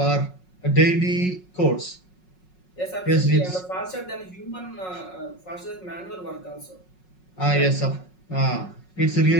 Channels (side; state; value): right; late; 5.5 ms